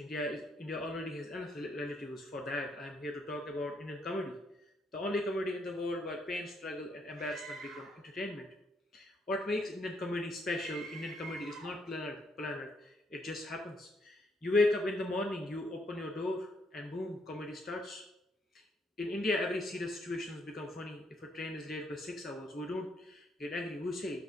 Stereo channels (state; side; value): normal; both; correlation 0.73